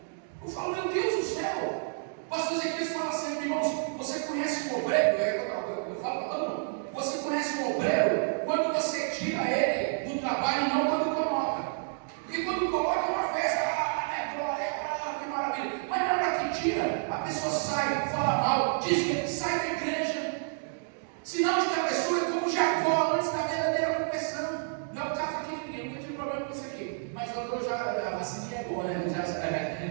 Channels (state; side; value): silent; left; digital silence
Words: Eu falo, meu Deus do céu. O pastor Ezequiel fala sempre, irmãos, você conhece um obreiro? Eu falo para todo mundo, você conhece um obreiro quando você tira ele do trabalho e não quando coloca. Porque quando coloca é uma festa, glória, que maravilha. Mas na hora que tira, a pessoa sai, fala mal, diz que sai da igreja. Sinal de que a pessoa é como Jacó antes da verdadeira conversão. Não é o caso aqui de ninguém, nunca tive problema com isso aqui. Mas a vacininha é boa, né?